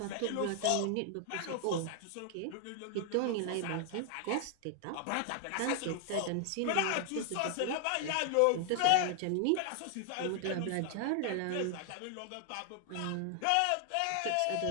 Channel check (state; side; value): different; both; correlation 0.00